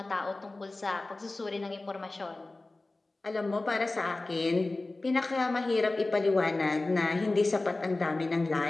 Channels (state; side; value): quieter; right; 3.1 dB